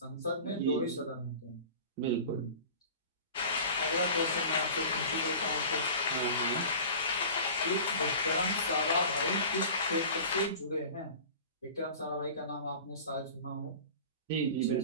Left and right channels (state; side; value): inverted; both; correlation -0.39